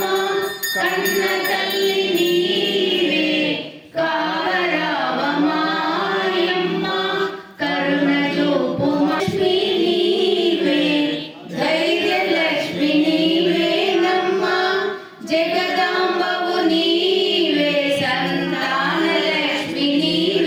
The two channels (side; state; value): both; identical; correlation 1.00